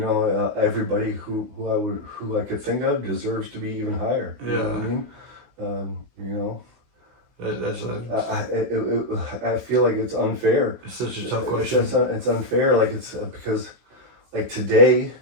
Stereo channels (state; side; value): late; left; 16 ms